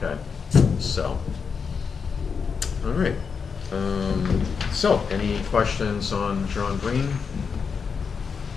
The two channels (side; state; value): right; quieter; 5.8 dB